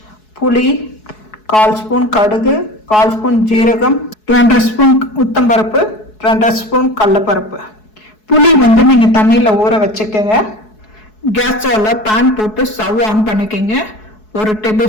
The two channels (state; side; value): late; right; 4.7 ms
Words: புளி 1/4 ஸ்பூன், கடுகு 1/4 ஸ்பூன், ஜீரகம் 2.5 ஸ்பூன், உளுத்தம்பருப்பு 2.5 ஸ்பூன், கடலைப்பருப்பு. புளி வந்து நீங்கள் தண்ணியில் ஊற வச்சுக்கோங்க. கேஸ் ஸ்டவ்வில் பேன் போட்டு ஸ்டவ் ஆன் பண்ணிக்கோங்க. 1